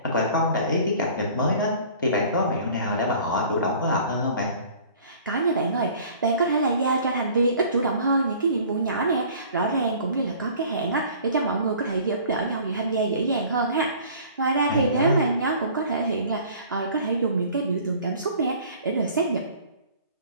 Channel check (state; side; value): inverted; both; correlation -0.49